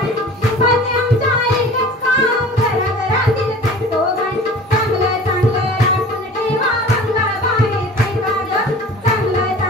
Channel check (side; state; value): both; normal; correlation 0.43